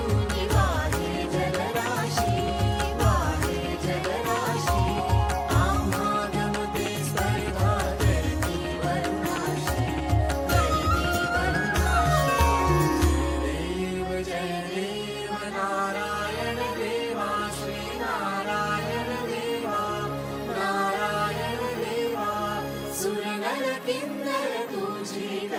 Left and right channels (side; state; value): both; identical; correlation 1.00